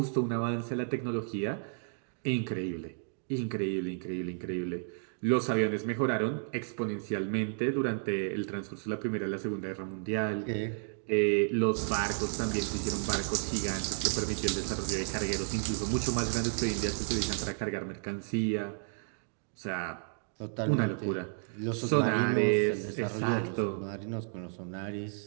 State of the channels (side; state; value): left; silent; digital silence